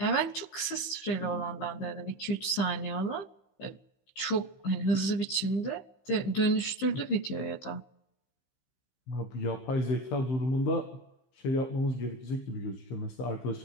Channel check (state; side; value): late; right; 15 ms